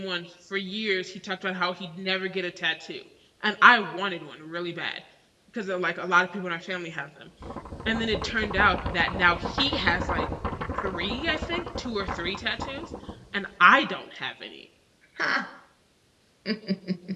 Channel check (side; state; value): both; identical; correlation 1.00